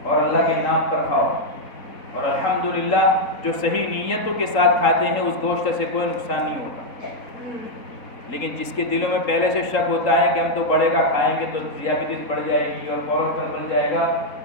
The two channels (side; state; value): right; late; 3.8 ms